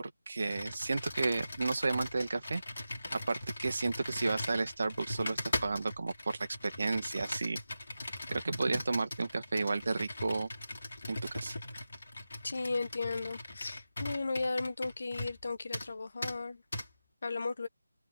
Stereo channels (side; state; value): both; inverted; correlation -0.93